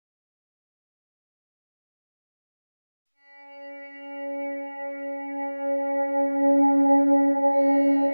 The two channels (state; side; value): inverted; both; correlation -1.00